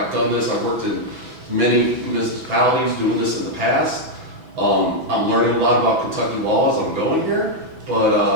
done this, I've worked in many municipalities doing this in the past. I'm learning a lot about Kentucky law as I'm going here, but,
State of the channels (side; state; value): left; late; 6.1 ms